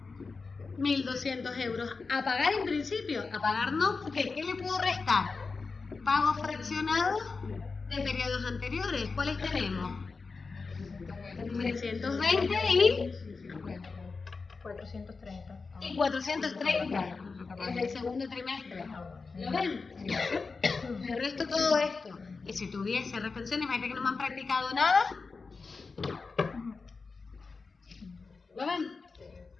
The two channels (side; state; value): right; quieter; 4.4 dB